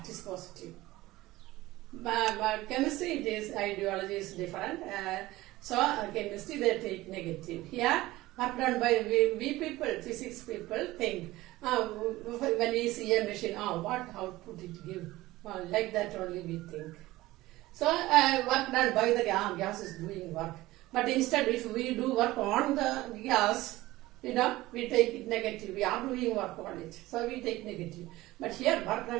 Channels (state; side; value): quieter; left; 18.0 dB